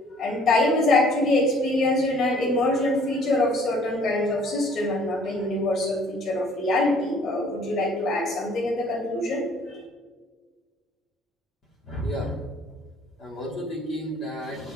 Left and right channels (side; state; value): both; normal; correlation 0.57